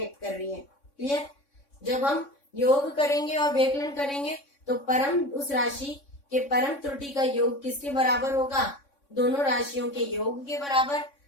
कर रही है। क्लियर। जब हम योग करेंगे और व्यकलन करेंगे तो परम उस राशि के परम त्रुटि का योग किसके बराबर होगा, दोनों राशियों के योग के बराबर।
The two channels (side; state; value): right; late; 3.6 ms